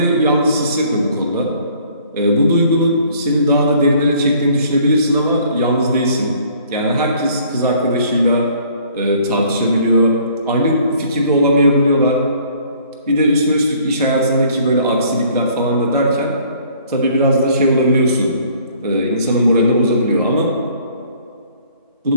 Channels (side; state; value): both; inverted; correlation -0.58